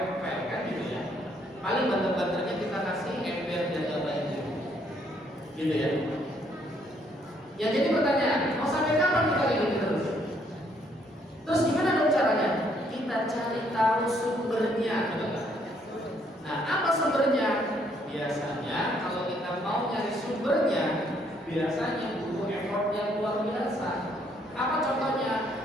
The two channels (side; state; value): both; normal; correlation 0.69